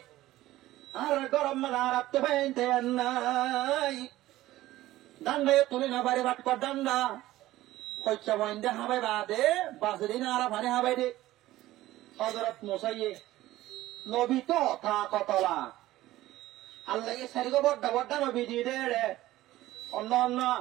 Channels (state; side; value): quieter; left; 16.0 dB